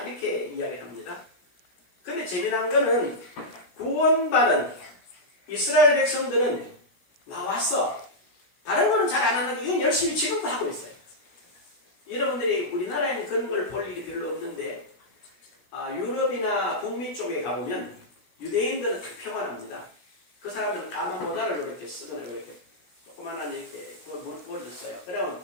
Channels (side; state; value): right; late; 16 ms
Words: 이렇게 이야기합니다. 근데 재미난 거는 구원받은 이스라엘 백성들은 나와서 다른 거는 잘 안 하는데 이건 열심히 지금도 하고 있어요. 여러분들이 우리나라에는 그런 걸 볼 일이 별로 없는데 유럽이나 북미 쪽에 가보면 유대인들은 다 평안합니다. 그 사람들은 까만 모자를 이렇게 쓰거나 이렇게 조그만한 이렇게 머리를 써요.